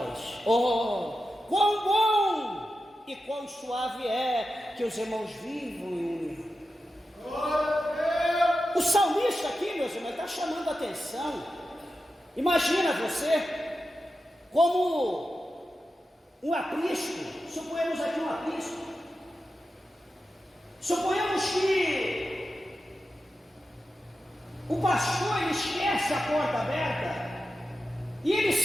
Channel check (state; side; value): normal; both; correlation 0.91